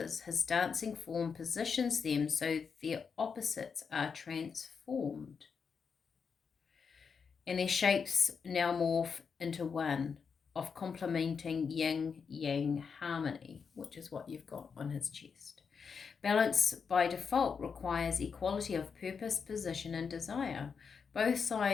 his dancing form positions them so their opposites are transformed, and their shapes now morph into one of complementing yin-yang harmony, which is what you've got on his chest. Balance by default requires equality of purpose, position, and desire. Both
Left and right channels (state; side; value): quieter; right; 5.9 dB